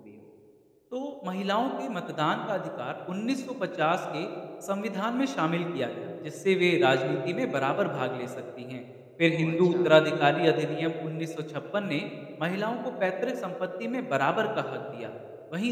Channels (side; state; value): both; identical; correlation 1.00